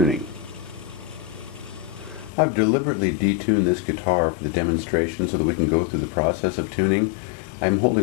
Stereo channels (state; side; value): drops out; right; at 2.3 s